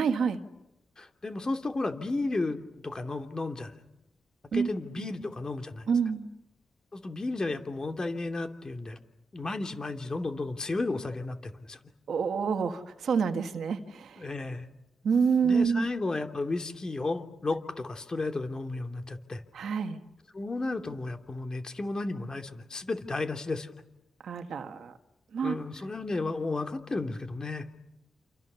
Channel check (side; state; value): both; normal; correlation 0.86